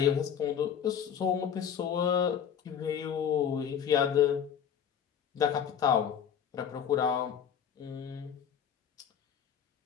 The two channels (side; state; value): right; quieter; 8.3 dB